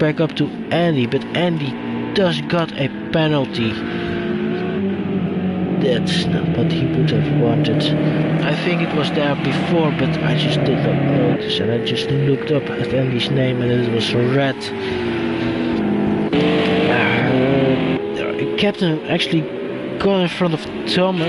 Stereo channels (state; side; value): identical; both; correlation 1.00